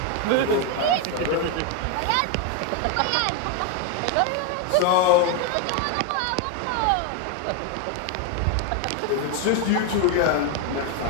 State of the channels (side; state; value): both; different; correlation 0.01